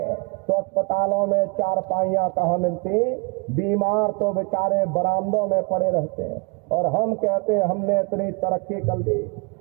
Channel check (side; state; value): left; quieter; 32.5 dB